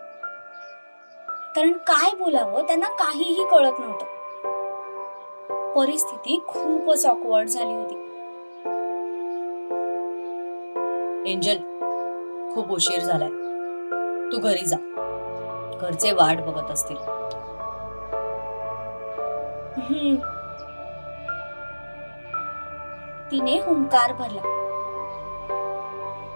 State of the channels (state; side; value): inverted; both; correlation -1.00